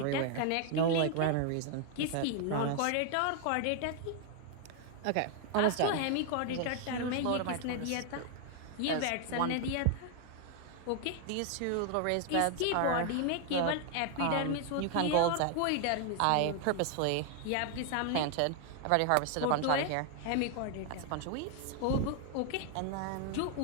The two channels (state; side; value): different; both; correlation 0.00